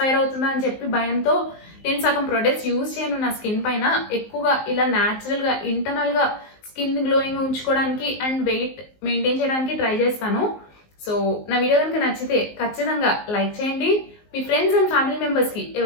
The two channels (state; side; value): late; right; 19 ms